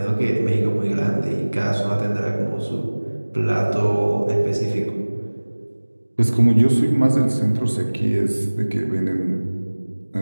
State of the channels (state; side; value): inverted; both; correlation -1.00